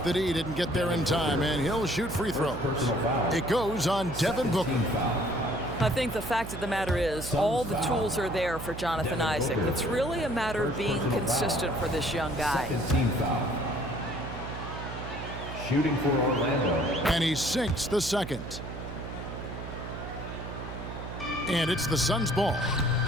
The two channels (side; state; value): right; noise; hum, 9 dB below the sound